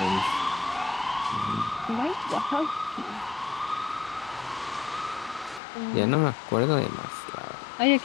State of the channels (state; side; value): drops out; right; at 5.6 s